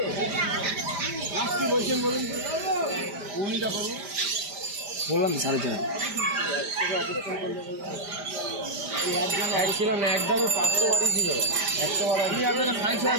কি বলছেন বলুন, উনিটা করবো বললাম 4.5 ছিল না, একদমই 500 বাড়ি ছিল, 100 বাড়ি। আপনারা 60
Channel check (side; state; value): left; late; 5.0 ms